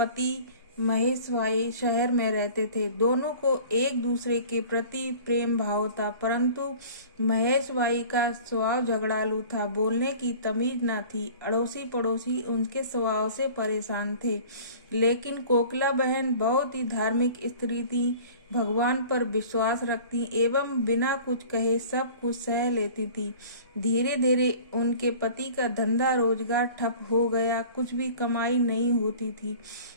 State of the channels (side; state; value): both; inverted; correlation -0.45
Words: महेश भाई शहर में रहते थे। दोनों को एक दूसरे के प्रति प्रेम भाव था, परंतु महेश भाई का स्वभाव झगड़ालू था, बोलने की तमीज न थी। अड़ोसी पड़ोसी उनके स्वभाव से परेशान थे। लेकिन कोकिला बहन बहुत ही धार्मिक स्त्री थी, भगवान पर विश्वास रखती एवं बिना कुछ कहे सब कुछ सह लेती थी। धीरे धीरे उनके पति का धंधा रोजगार ठप हो गया, कुछ भी कमाई नहीं होती थी।